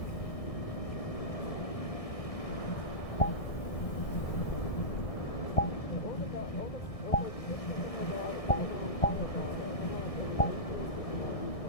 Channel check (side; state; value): right; late; 1.6 ms